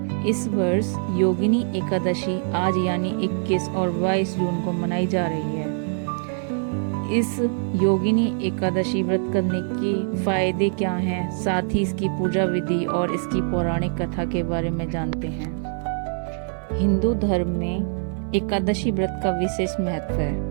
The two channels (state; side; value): silent; left; 62 dB below the other